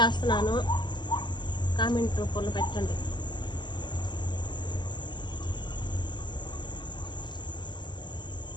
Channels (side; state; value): right; late; 0.22 ms